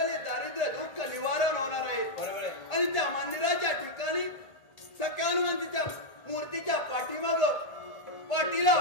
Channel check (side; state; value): right; late; 1.8 ms